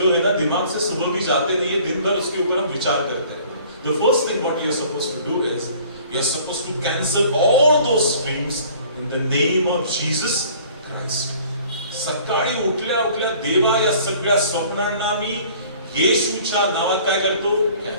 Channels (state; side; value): inverted; both; correlation -0.52